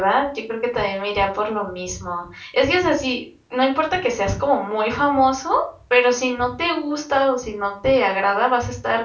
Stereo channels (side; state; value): both; identical; correlation 1.00